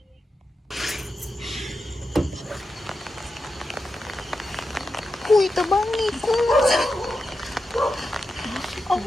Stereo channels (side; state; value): both; normal; correlation 0.89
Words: Uy, tabangi ko.